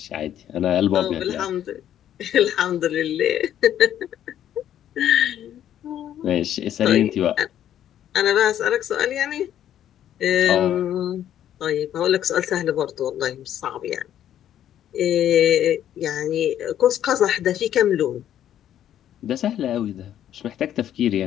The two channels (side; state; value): right; quieter; 10.9 dB